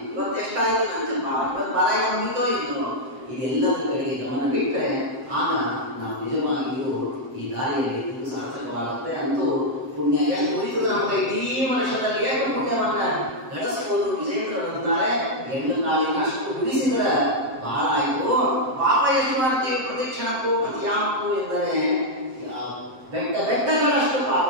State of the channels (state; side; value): late; left; 7.7 ms